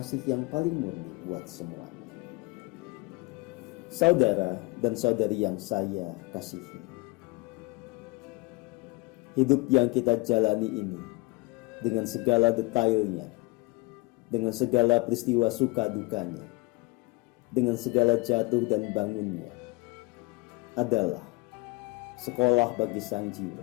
yang paling murni buat semuanya. Saudara dan saudari yang saya kasihi, hidup yang kita jalani ini dengan segala detailnya, dengan segala peristiwa suka dukanya, dengan segala jatuh dan bangunnya, adalah sekolah bagi sang jiwa.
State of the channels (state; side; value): quieter; right; 25.2 dB